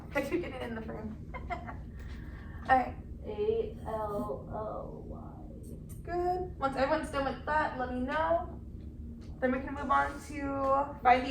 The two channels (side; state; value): both; identical; correlation 1.00